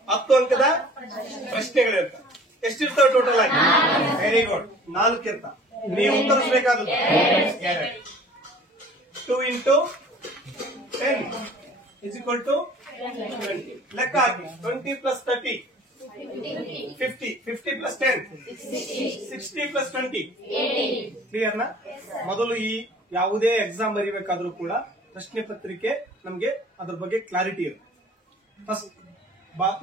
10 ಅಂಕದ ಪ್ರಶ್ನೆಗಳಿರ್ತಾವೆ. ಎಷ್ಟಿರ್ತಾವೆ ಟೋಟಲ್ ಆಗಿ? ವೆರಿ ಗುಡ್, 4 ಇರ್ತಾವೆ. ನೀವು ಉತ್ತರಿಸಬೇಕಾದದ್ದು 2 × 10 = 20. ಲೆಕ್ಕ ಹಾಕಿ. 20 + 30 50. 50 + 10 60 + 20 ಕ್ಲಿಯರ್ ನಾ? ಮೊದಲು ಈ ಯಾವುದೇ ಎಕ್ಸಾಮ್ ಬರೀಬೇಕಾದ್ರೂ ಕೂಡ ಪ್ರಶ್ನೆ ಪತ್ರಿಕೆ ನಮ್ಗೆ ಅದ್ರ ಬಗ್ಗೆ ಕ್ಲಾರಿಟಿ ಇರುತ್ತೆ. ಫಸ್ಟ್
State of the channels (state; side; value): normal; both; correlation 0.49